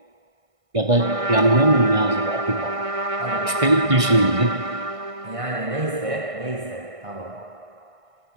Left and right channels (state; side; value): late; left; 1.5 ms